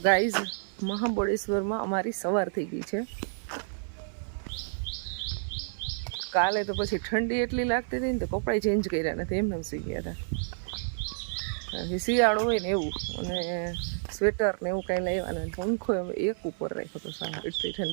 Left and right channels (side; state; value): left; silent; 58 dB below the other